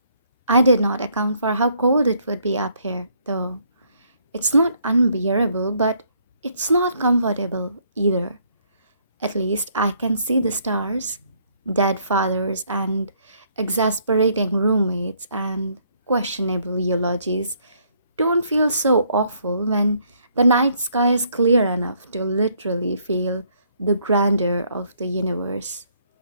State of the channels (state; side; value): inverted; both; correlation -0.67